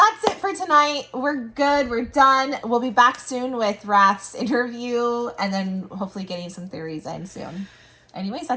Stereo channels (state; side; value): identical; both; correlation 1.00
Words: it for tonight. We're good. We're done. We'll be back soon with Rath's interview and then hopefully getting some theories in soon. Anyways,